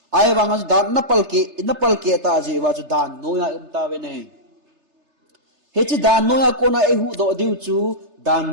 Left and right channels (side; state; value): left; late; 3.3 ms